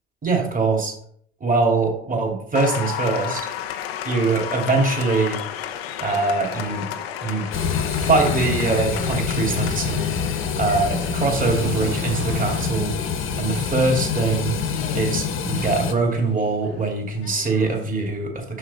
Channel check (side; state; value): both; normal; correlation 0.34